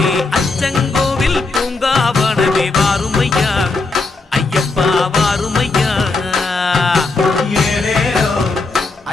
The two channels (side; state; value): right; quieter; 3.6 dB